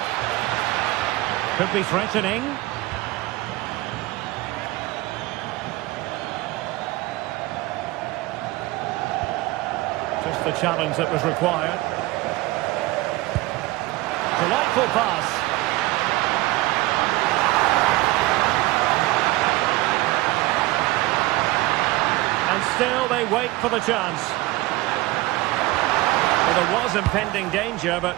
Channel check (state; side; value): quieter; left; 19.5 dB